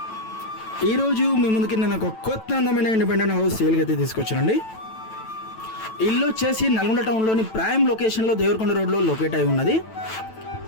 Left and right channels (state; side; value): late; right; 9.1 ms